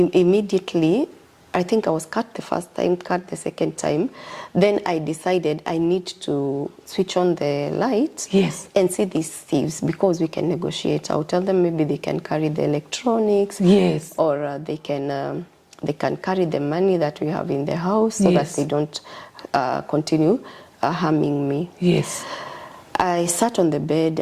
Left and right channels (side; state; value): both; identical; correlation 1.00